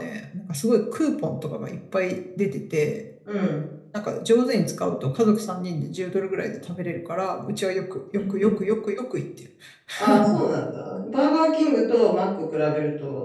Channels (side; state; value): both; identical; correlation 1.00